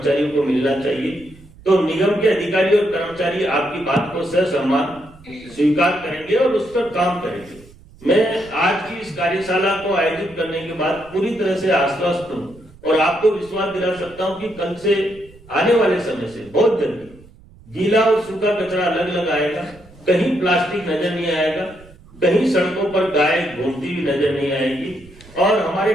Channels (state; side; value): noise; right; rumble, 23 dB below the sound